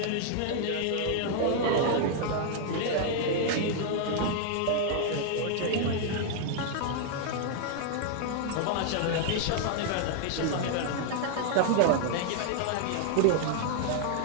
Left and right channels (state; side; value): different; both; correlation 0.00